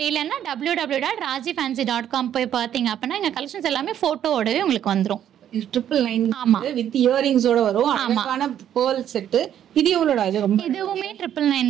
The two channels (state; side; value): quieter; left; 10.3 dB